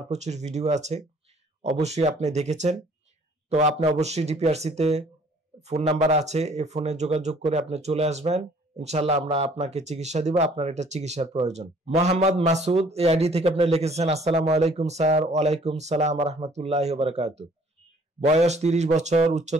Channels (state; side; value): normal; both; correlation 0.57